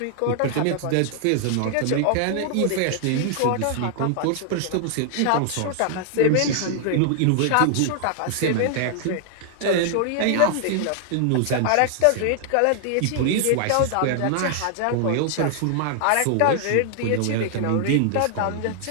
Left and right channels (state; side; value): different; both; correlation -0.01